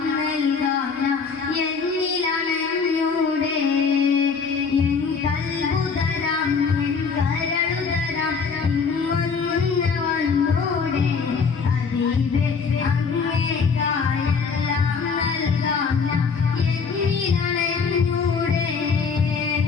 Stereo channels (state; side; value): quieter; right; 5.4 dB